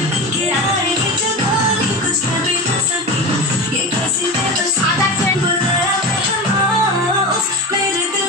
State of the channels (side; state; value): both; normal; correlation 0.26